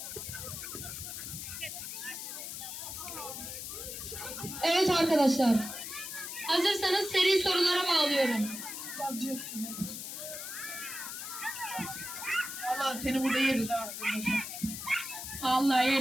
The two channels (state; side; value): noise; left; hiss, 7 dB below the sound